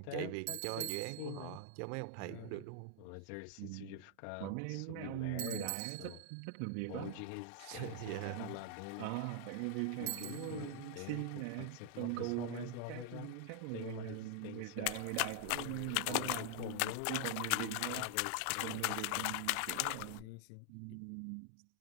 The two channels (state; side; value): different; both; correlation 0.00